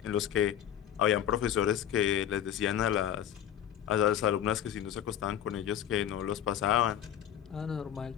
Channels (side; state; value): right; quieter; 10.2 dB